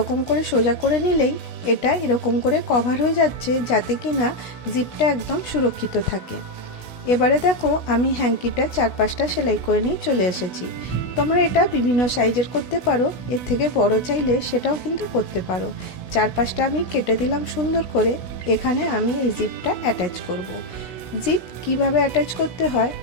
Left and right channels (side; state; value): right; late; 16 ms